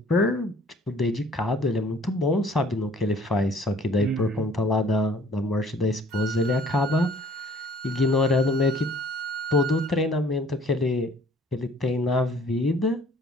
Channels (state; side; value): normal; both; correlation 0.55